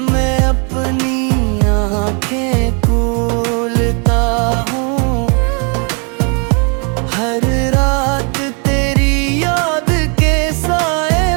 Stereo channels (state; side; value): quieter; left; 36.3 dB